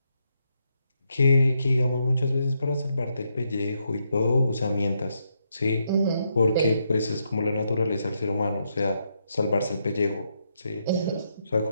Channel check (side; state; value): both; inverted; correlation -0.80